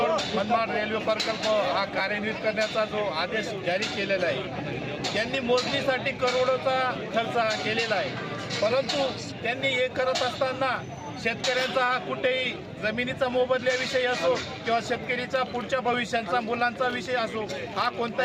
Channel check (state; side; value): identical; both; correlation 1.00